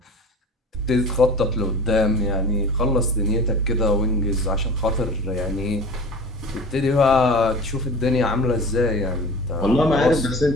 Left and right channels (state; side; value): normal; both; correlation 0.38